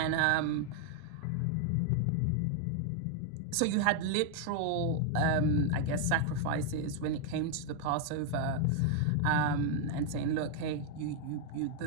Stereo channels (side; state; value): both; different; correlation 0.00